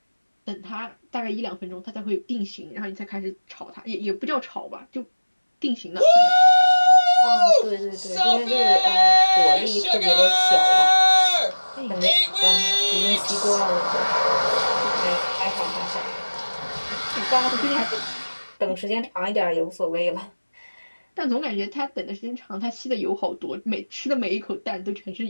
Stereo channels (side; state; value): both; inverted; correlation -1.00